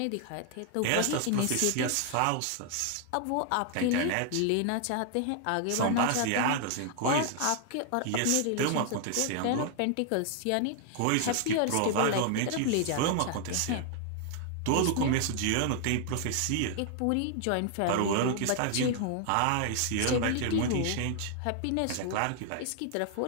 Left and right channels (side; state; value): both; different; correlation 0.00